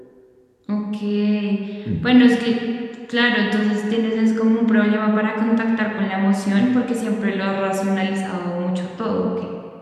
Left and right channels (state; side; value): identical; both; correlation 1.00